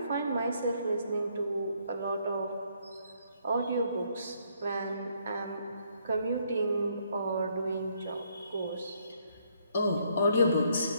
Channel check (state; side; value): inverted; both; correlation -0.70